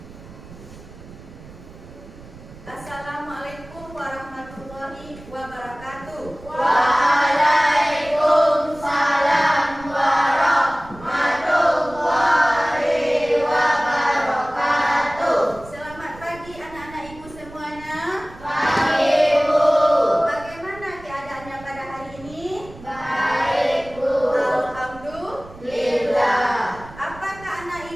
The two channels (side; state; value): right; noise; rumble, 18 dB below the sound